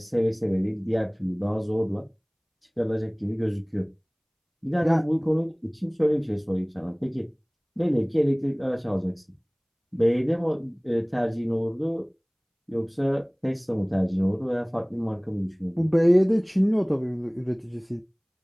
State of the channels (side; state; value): both; identical; correlation 1.00